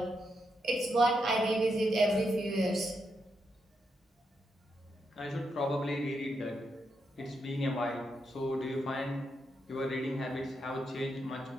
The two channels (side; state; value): both; normal; correlation 0.82